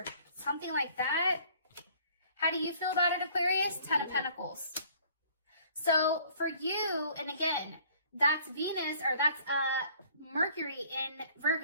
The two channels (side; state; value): both; inverted; correlation -0.55